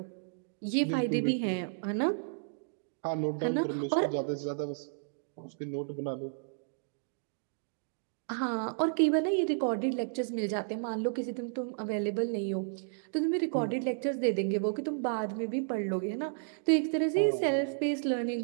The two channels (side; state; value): left; silent; digital silence